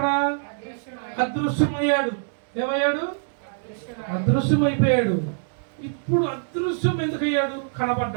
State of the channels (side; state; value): left; silent; digital silence